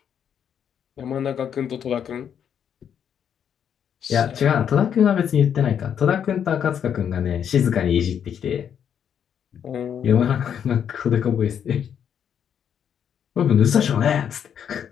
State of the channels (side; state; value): right; quieter; 8.5 dB